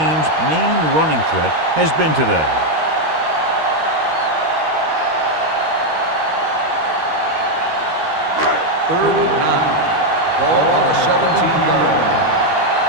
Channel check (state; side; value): late; left; 13 ms